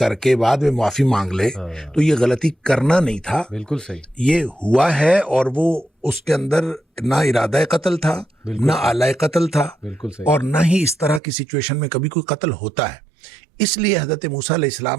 کے بعد میں معافی مانگ لے، تو یہ غلطی کرنا نہیں تھا، بالکل صحیح. یہ ہوا ہے. اور وہ اس کے اندر نہ ارادہ قتل تھا، نہ آلہ قتل تھا، بالکل صحیح. اور نہ ہی اس طرح کی سچویشن میں کبھی کوئی قتل ہوتا ہے. اس لیے حضرت موسیٰ علیہ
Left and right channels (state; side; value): drops out; left; at 11.2 s